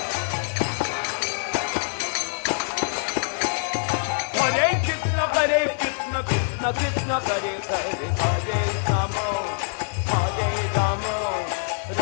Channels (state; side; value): silent; right; digital silence